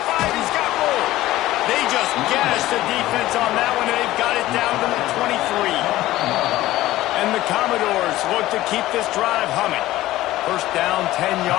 he's got more. They just gashed the defense on that one, and they've got it down to the 23. And the Commodores look to keep this drive humming. First down, 10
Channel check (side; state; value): right; quieter; 16.0 dB